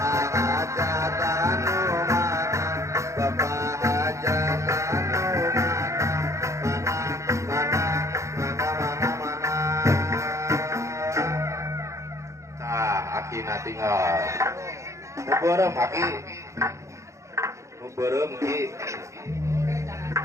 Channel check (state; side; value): late; left; 0.14 ms